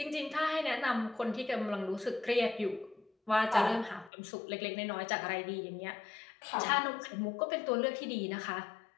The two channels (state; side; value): drops out; right; at 4.1 s